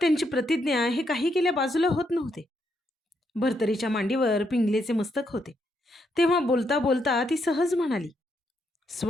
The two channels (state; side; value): normal; both; correlation 0.77